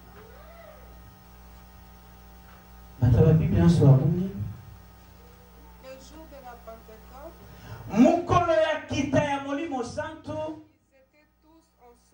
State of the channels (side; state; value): both; identical; correlation 1.00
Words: La Bible en soit bonne. Le jour de la Pentecôte, Mukolo ya kita ya molimo santo. ils étaient tous